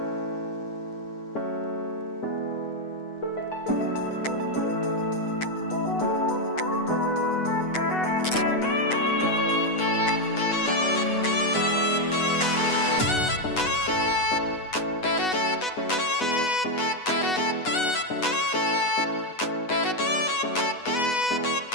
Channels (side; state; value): right; late; 8.1 ms